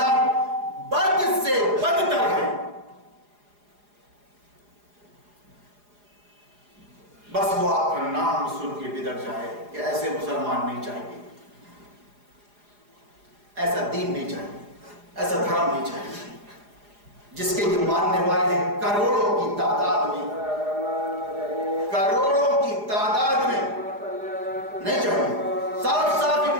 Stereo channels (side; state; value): left; late; 4.9 ms